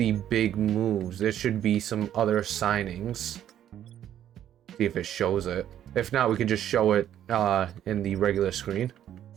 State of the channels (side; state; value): left; quieter; 10.9 dB